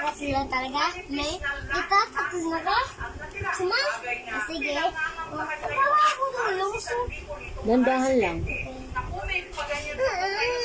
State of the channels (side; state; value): both; identical; correlation 1.00